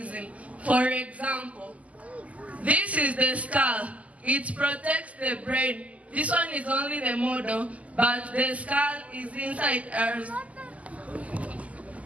For example, this is the skull. It protects the brain. This one is only the model, but the skull is inside ours.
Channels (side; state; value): left; late; 0.071 ms